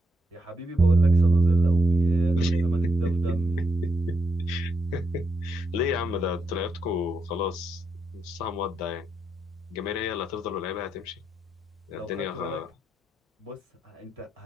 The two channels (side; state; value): both; normal; correlation 0.81